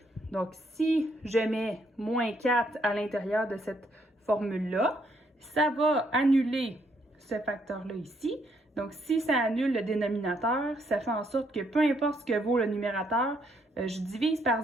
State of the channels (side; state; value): both; normal; correlation 0.72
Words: Donc, si je mets moins 4 à l'intérieur de cette formule-là, ça va annuler ce facteur-là ici. Donc, si ça annule le dénominateur, ça fait en sorte que peu importe ce que vaut le numérateur, je divise par